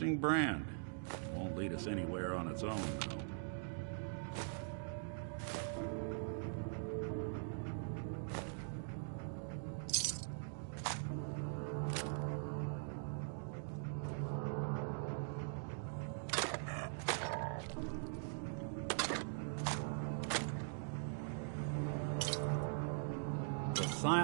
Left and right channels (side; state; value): left; silent; digital silence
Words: brand. Won't lead us anywhere on its own, though.